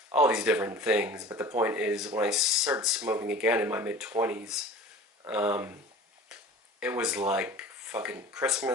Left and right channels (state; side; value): normal; both; correlation 0.41